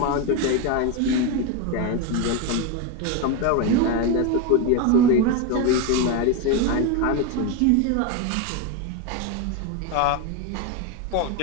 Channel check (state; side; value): different; both; correlation 0.03